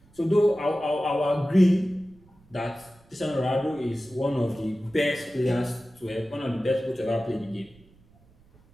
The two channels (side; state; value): right; noise; rumble, 29 dB below the sound